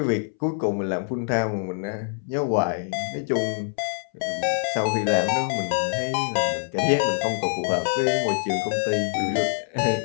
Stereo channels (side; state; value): right; silent; 62 dB below the other